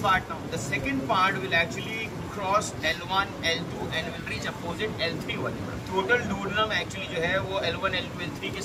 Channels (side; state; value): both; identical; correlation 1.00